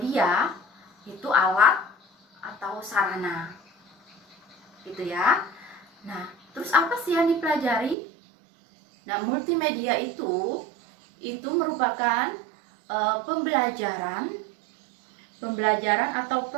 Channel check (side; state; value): left; drops out; at 8.0 s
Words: itu alat atau sarana, gitu ya. Nah, terus apa sih yang dipelajari? Nah, multimedia itu merupakan pembelajaran atau